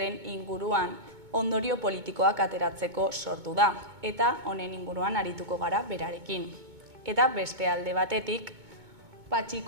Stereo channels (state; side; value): late; left; 2.2 ms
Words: inguruan ondorio politikoak ateratzeko sortu da eta honen inguruan arituko gara berarekin. Eta beste alde batetik,